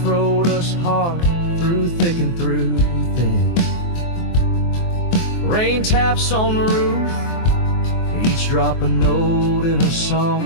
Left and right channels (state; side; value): late; right; 23 ms